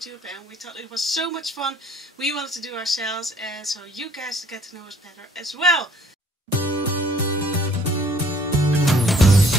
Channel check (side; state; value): both; normal; correlation 0.59